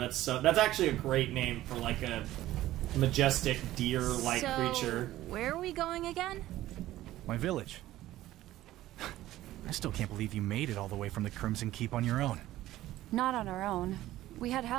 actually a great name for, like, a majestic deer-like creature. Where are we going again? My village. I still can't believe you made it all the way from the Crimson Keep on your own. Not on our own. We had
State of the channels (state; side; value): quieter; left; 15.0 dB